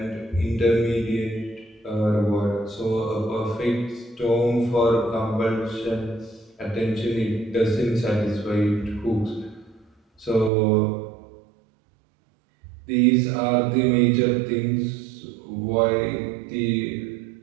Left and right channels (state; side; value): drops out; left; at 10.5 s